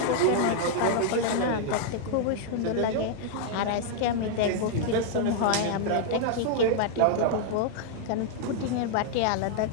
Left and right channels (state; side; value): different; both; correlation -0.01